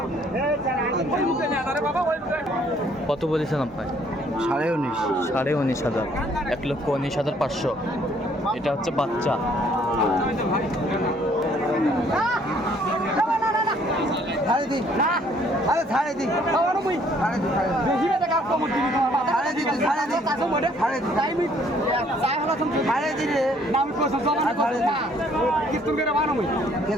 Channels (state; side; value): normal; both; correlation 0.62